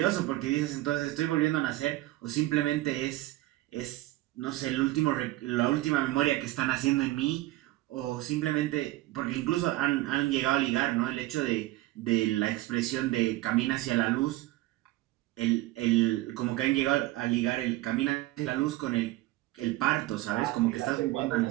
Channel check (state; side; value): quieter; left; 17.2 dB